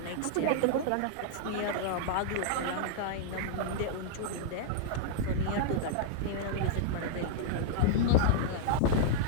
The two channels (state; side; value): different; both; correlation -0.02